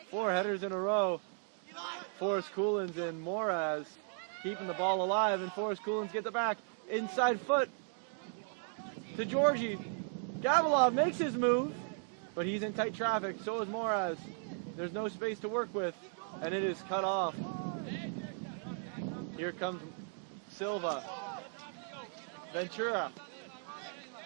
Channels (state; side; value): silent; left; 54 dB below the other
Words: 4 headers in a row. Forrest Coolins and Moraz keeping the ball alive, and Forrest Coolins gets it back. Inside foot to Georgie. Gavilov makes his move, but he's in tight traffic. So is Moraz. There's no space to work with, and it is cut off. Here comes Silva. Ventura.